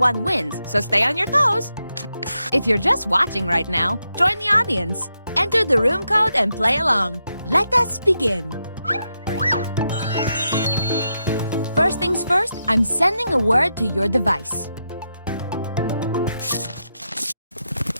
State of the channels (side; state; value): both; inverted; correlation -0.85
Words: wins, so stay on your toes. If you're just watching right now, join the audience. Enter the room code and play along. Let us begin. First things first, I'm sending a word to your device.